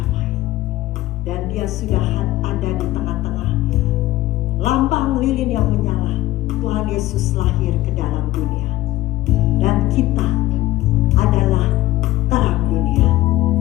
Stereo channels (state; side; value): quieter; right; 16.5 dB